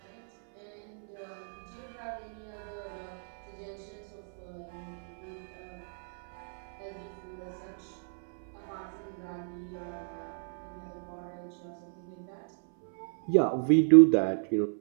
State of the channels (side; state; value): left; silent; 56 dB below the other